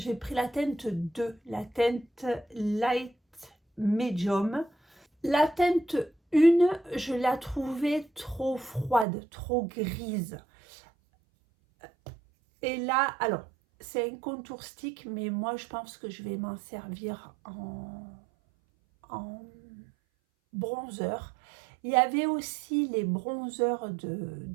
pris la teinte 2, la teinte light medium. La teinte 1, je la trouvais trop froide, trop grise. Et là, alors, c'est un contour stick, mais moi je pense que je vais m'en servir en bronzer. Il y avait aussi les bronzers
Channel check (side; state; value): left; drops out; at 9.1 s